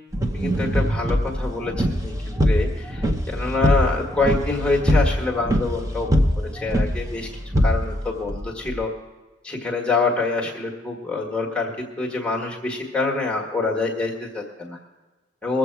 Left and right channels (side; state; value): both; normal; correlation 0.71